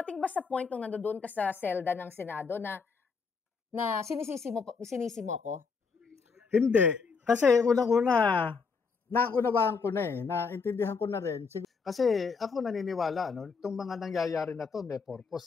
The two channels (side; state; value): right; quieter; 5.1 dB